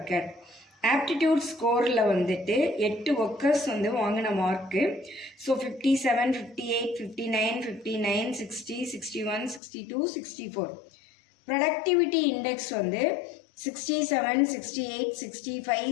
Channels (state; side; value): drops out; right; at 9.6 s